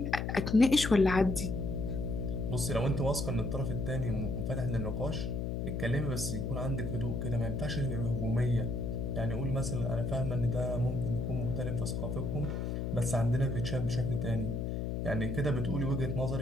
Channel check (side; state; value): left; noise; hum, 1 dB below the sound